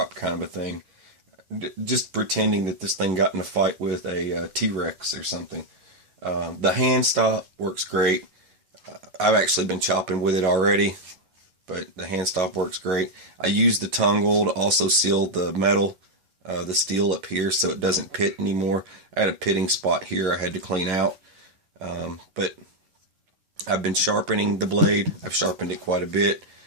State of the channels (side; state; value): left; late; 11 ms